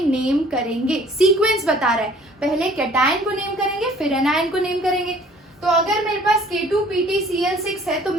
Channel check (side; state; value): both; normal; correlation 0.54